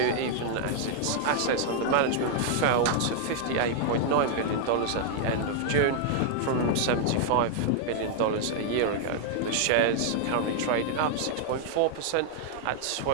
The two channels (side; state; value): both; different; correlation -0.01